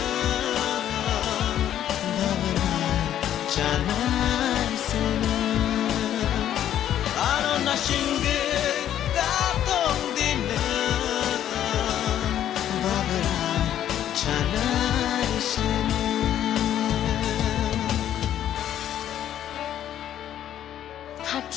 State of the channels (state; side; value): quieter; right; 11.0 dB